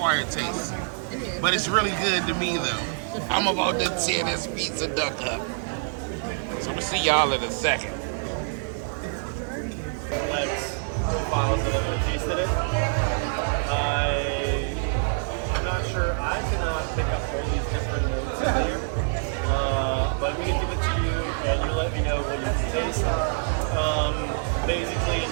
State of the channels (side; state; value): left; silent; digital silence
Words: taste, but it's really good to me though. I'm about to tear this piece of duck up. So we'll see y'all in a second. Files that have tasted it. I'm not sure. I cannot pick up all these different notes in here. But we can give it to you and you let me know what you taste. Basically, in